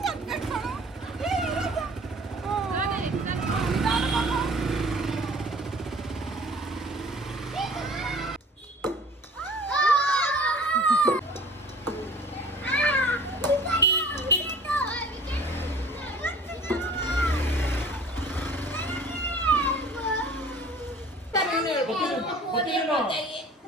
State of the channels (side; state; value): both; normal; correlation 0.47